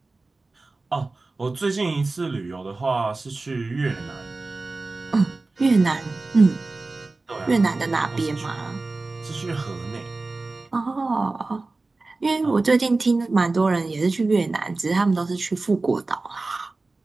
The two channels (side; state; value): left; quieter; 3.4 dB